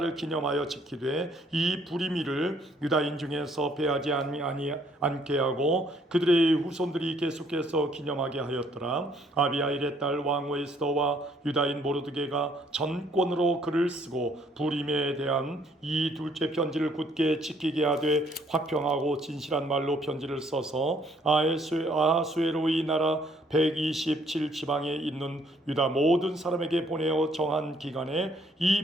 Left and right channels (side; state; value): both; normal; correlation 0.65